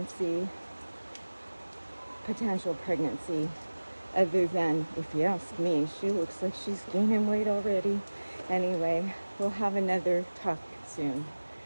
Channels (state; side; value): inverted; both; correlation -1.00